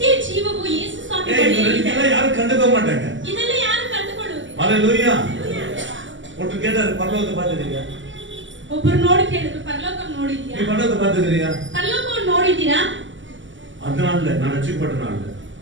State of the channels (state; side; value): late; left; 0.55 ms